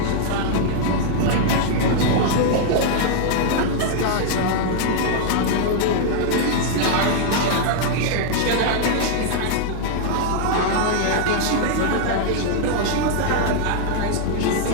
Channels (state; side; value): different; both; correlation -0.01